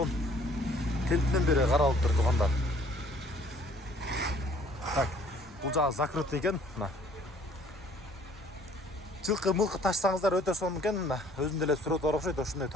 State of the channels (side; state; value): both; normal; correlation 0.58